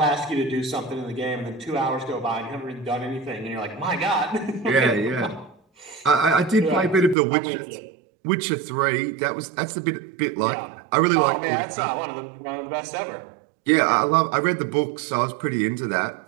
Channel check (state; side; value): drops out; left; at 7.2 s